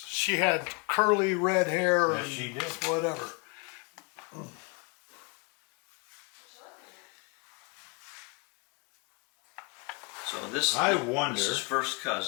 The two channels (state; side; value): quieter; right; 30.8 dB